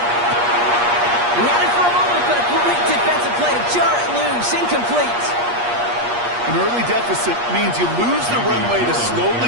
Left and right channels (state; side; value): late; left; 8.4 ms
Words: He had it for a moment, but a great defensive play to jar it loose. Incomplete. An early deficit means you lose the runway to slowly